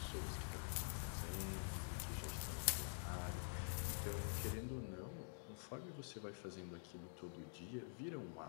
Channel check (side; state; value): right; silent; digital silence